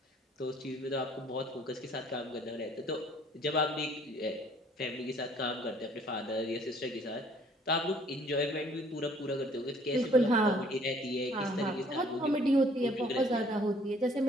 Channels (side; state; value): both; normal; correlation 0.59